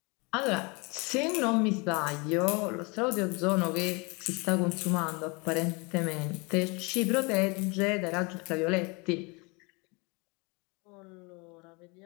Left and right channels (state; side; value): quieter; right; 29.0 dB